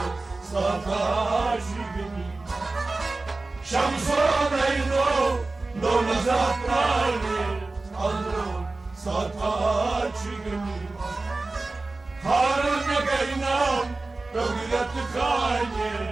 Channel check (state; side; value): quieter; left; 3.3 dB